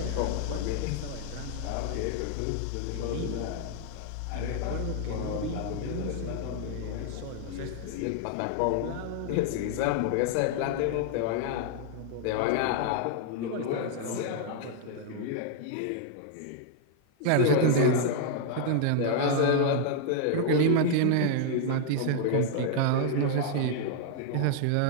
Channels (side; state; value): both; different; correlation 0.00